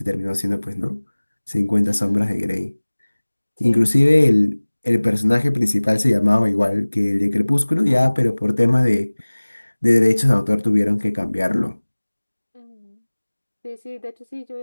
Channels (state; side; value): inverted; both; correlation -1.00